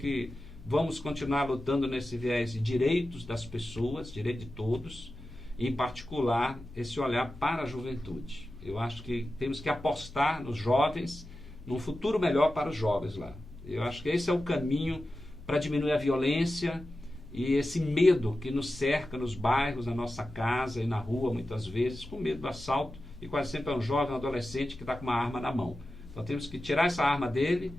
vamos continuar lutando nesse viés de direitos das pessoas, direito de todos, e em particular esse olhar para a juventude. Eu acho que temos que apostar nos jovens, num futuro melhor para os jovens lá. Eu acho que esse é o caminho para diminuir a violência e esse medo que nos cerca nos bairros, na nossa casa e na rua, muitas vezes, com medo do assalto, e quase sempre é um jovem, um adolescente que está com uma arma na mão. Então temos que tirar essa arma dele,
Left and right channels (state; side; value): normal; both; correlation 0.93